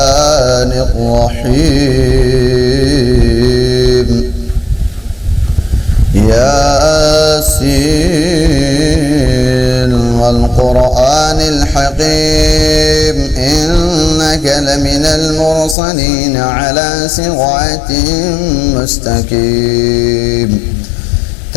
الرحيم ياسين والقرآن الحكيم إنك لمن المرسلين على صراط مستقيم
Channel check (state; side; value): drops out; right; at 15.8 s